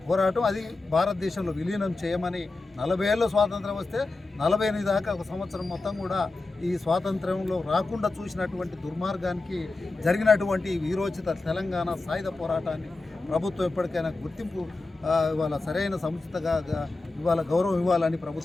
పోరాటం. అది భారతదేశంలో విలీనం చేయమని 40 ఏళ్ళ స్వాతంత్రం వస్తే 48 దాకా ఒక సంవత్సరం మొత్తం కూడా ఈ స్వాతంత్రంలో రాకుండా చూసినటువంటి దుర్మార్గానికి జరిగినటువంటి వీరోచిత తెలంగాణ సాయుధ పోరాటాన్ని ప్రభుత్వం ఎప్పటికైనా గుర్తింపు ఇవాళ సరైన సముచితగా ఇవాళ గౌరవం ఇవ్వాలని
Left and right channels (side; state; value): right; quieter; 3.4 dB